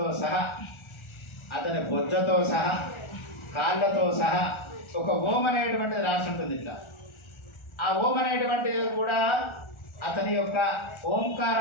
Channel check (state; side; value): late; right; 1.4 ms